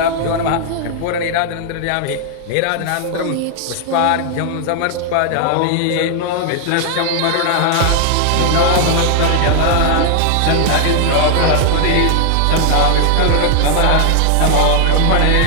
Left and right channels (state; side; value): different; both; correlation 0.00